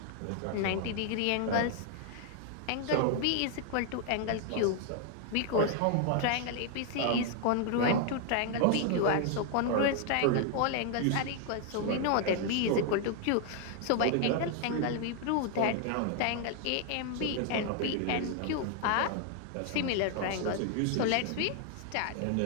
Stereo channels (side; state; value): both; different; correlation 0.00